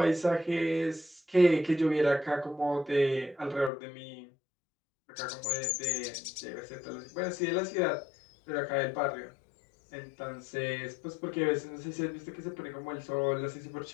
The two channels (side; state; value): right; drops out; at 3.7 s